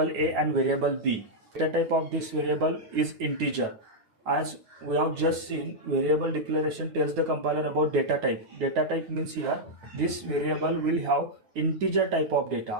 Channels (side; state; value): left; late; 9.3 ms